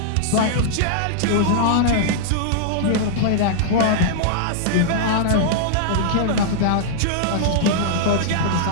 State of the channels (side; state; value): both; different; correlation -0.01